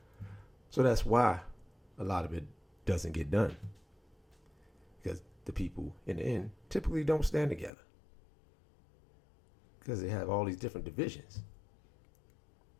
So that's why a lot of it doesn't get done. Because the people in the end typically don't stand together. Because they have all these different divisions.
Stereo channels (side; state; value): right; drops out; at 7.7 s